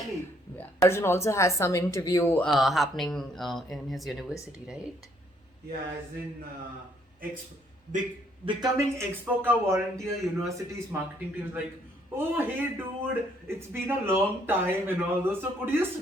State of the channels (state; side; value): normal; both; correlation 0.67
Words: on. Yeah. Arjun also has some interview happening in his university, right? Yeah, as in becoming Expoca volunteer university's marketing team is like, oh hey dude, it's been a long time and all those. So could you